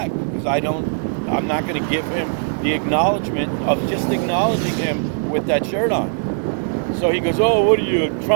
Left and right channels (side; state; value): left; silent; digital silence